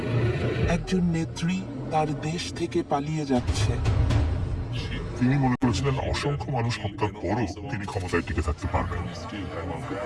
একজন নেত্রী তার দেশ থেকে পালিয়ে যাচ্ছে। তিনি মনে করেছিলেন অসংখ্য মানুষ হত্যার পরও তিনি ক্ষমতায় টিকে থাকতে পারবেন।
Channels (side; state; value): both; identical; correlation 1.00